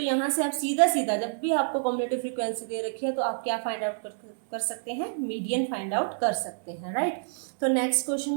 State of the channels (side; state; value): left; silent; 59 dB below the other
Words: यहाँ से आप सीधा सीधा जब भी आपको कम्युलेटिव फ्रीक्वेंसी दे रखी है तो आप क्या फाइंड आउट कर सकते हैं, मीडियन फाइंड आउट कर सकते हैं, राइट। तो नेक्स्ट क्वेश्चन